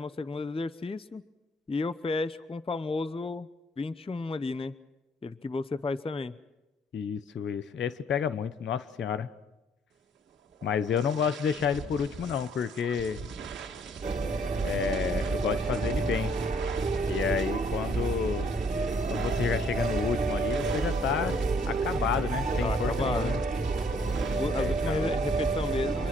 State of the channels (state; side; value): normal; both; correlation 0.63